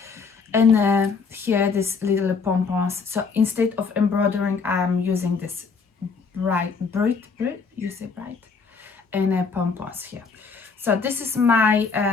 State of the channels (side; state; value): right; quieter; 5.1 dB